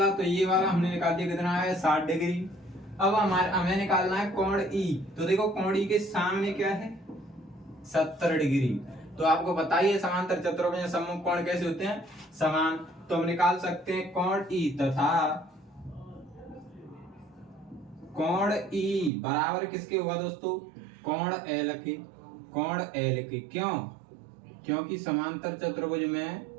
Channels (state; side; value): drops out; left; at 19.1 s